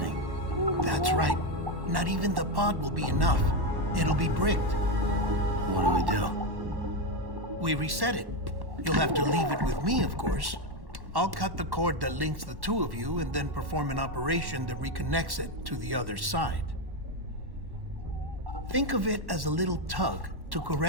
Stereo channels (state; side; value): late; left; 1.1 ms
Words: That's right. Not even the pod will be enough. It'll be bricked. What do we do? We reset it. You'll have to leave it with me, of course. I'll cut the cord that links the two of you and then perform an operation that reconnects it to the other side. Think of it as a little tug to